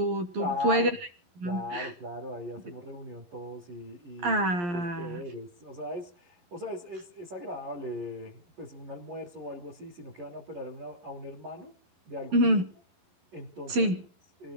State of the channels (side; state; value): left; late; 11 ms